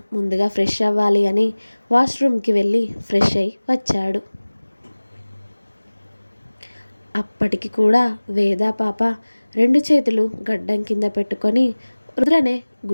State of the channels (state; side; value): inverted; both; correlation -1.00